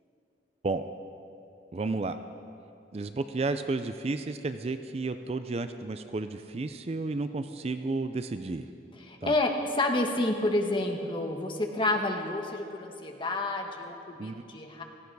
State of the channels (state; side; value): normal; both; correlation 0.48